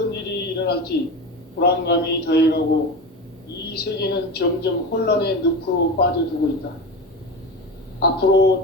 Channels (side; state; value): both; normal; correlation 0.24